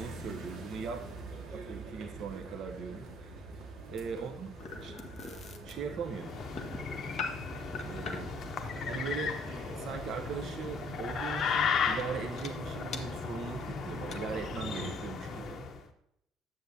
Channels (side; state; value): both; normal; correlation 0.60